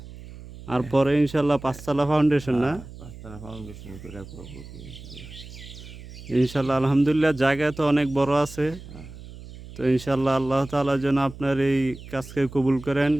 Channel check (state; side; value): noise; right; hum, 15 dB below the sound